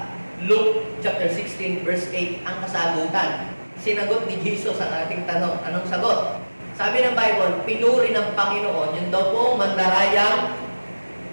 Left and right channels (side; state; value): both; inverted; correlation -1.00